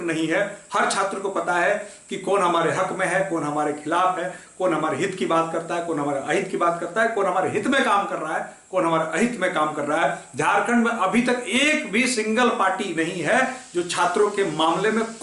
नहीं है। हर छात्र को पता है कि कौन हमारे हक में है, कौन हमारे खिलाफ है, कौन हमारे हित की बात करता है, कौन हमारे अहित की बात करता है, कौन हमारे हित में काम कर रहा है, कौन हमारे अहित में काम कर रहा है। झारखंड में अभी तक एक भी सिंगल पार्टी नहीं है जो छात्रों के मामले में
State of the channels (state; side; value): identical; both; correlation 1.00